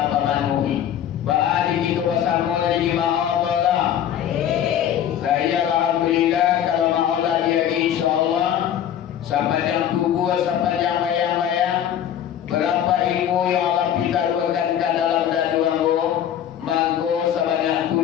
pemanuhi. Ba'adi kita bersama dari ma'adallah. Saya alhamdulillah kalau ma'adallah dia insyaAllah sepanjang tubuh, sepanjang bayang-bayang, berapa ilmu yang Allah pitaruhkan ke dalam daduanmu, mangko sebanyak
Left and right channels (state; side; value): quieter; right; 10.1 dB